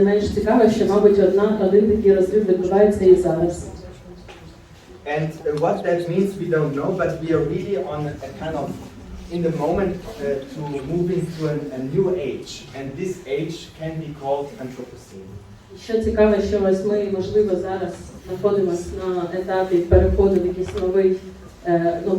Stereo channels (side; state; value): both; identical; correlation 1.00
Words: менш цікаво, що, мабуть, один такий розрив відбувається і зараз. And what that means we don't know, but we are really on a kind of in the moment to move into a new age, and this age can be called Anthropocene. Що цікаво, що ось ми, можливо, зараз знаходимося на етапі переходу в якийсь